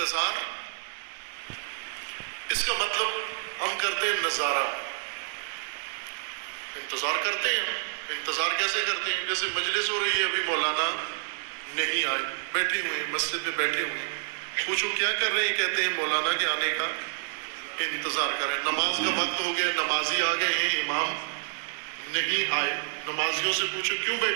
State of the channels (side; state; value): left; silent; digital silence